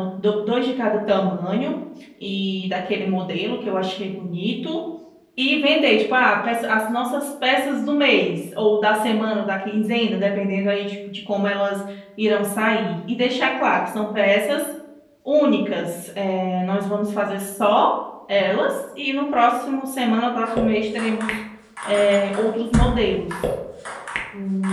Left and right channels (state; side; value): identical; both; correlation 1.00